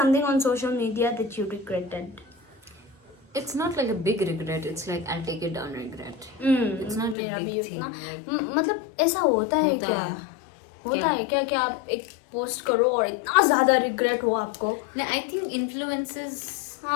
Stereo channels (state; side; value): drops out; right; at 7.2 s